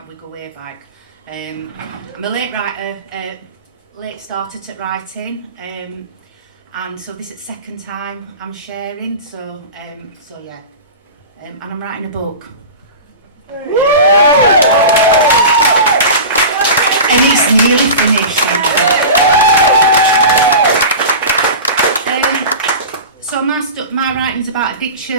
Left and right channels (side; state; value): both; inverted; correlation -0.31